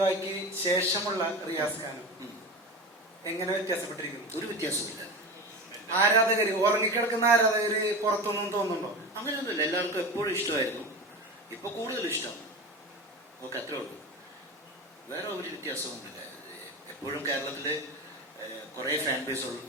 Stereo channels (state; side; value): normal; both; correlation 0.27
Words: വായ്ക്ക് ശേഷമുള്ള റിയാസ് ഖാനും എങ്ങനെ വ്യത്യാസപ്പെട്ടിരിക്കുന്നു? ഒരു വ്യത്യാസമില്ല. ആരാധകര്, ഉറങ്ങിക്കിടക്കുന്ന ആരാധകര് പുറത്തൊന്നും തോന്നുന്നുണ്ടോ? അങ്ങനെയൊന്നുമില്ല. എല്ലാവർക്കും എപ്പോഴും ഇഷ്ടമായിരുന്നു, ഇപ്പൊ കൂടുതൽ ഇഷ്ടമാണ്. ഓക്കെ, അത്രേ ഉള്ളൂ. വേറെ ഒരു വ്യത്യാസമൊന്നുമില്ല. എപ്പോഴും കേരളത്തില് കുറേ ഫാൻ ബേസ്